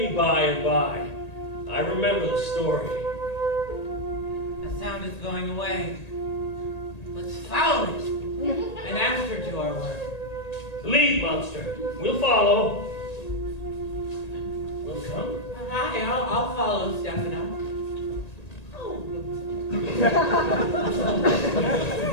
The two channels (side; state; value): right; late; 1.8 ms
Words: by and by. I remember the story. The sound is going away. Let's follow it and answer to our word. Lead, monster. We'll follow. We'll come. Hi, I'll follow Stefano. Oh.